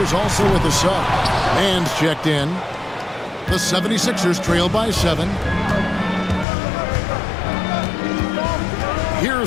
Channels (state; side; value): drops out; right; at 6.5 s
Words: also with a sub. Man's checked in. The 76ers trail by 7.